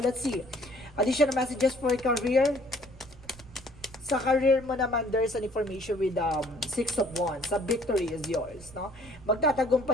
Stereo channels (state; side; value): noise; right; rumble, 21 dB below the sound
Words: let's see. Additional messages for career. Sa career mo naman, there's an information with Six of Wands. The victory is yours, no?